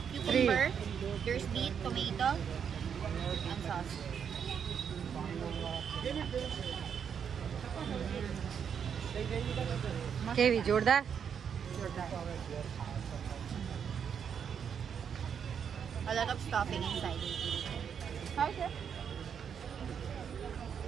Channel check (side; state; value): left; quieter; 7.5 dB